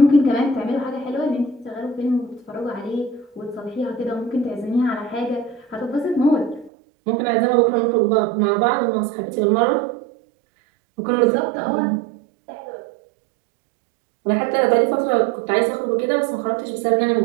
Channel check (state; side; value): drops out; left; at 6.7 s